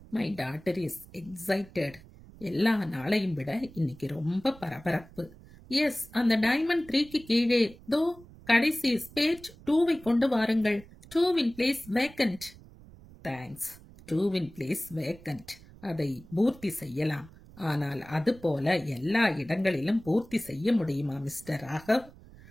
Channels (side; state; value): right; noise; rumble, 21 dB below the sound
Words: My daughter is excited. எல்லா நாளையும் விட இன்னைக்கு ரொம்ப பரபரப்பு. எஸ், அந்த டைமண்ட் 3க்கு கீழே தோ கடைசி ஸ்பேட் 2வை கொண்டு வாருங்கள். 2 place vacant. Thanks. 2 place vacant. அதை பூர்த்தி செய்யலாம். ஆனால் அது போல எல்லா இடங்களிலும் பூர்த்தி செய்ய முடியுமா mister Raghav?